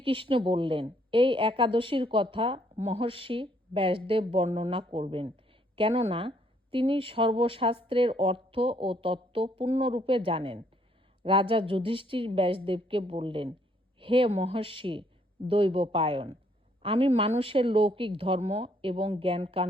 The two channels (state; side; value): normal; both; correlation 0.68